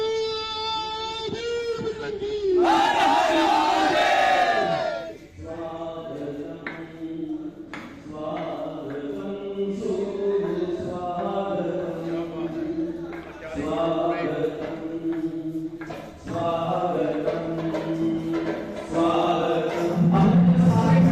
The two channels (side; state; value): both; identical; correlation 1.00